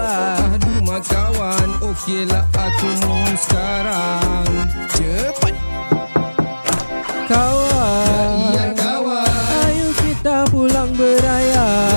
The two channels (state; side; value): inverted; both; correlation -1.00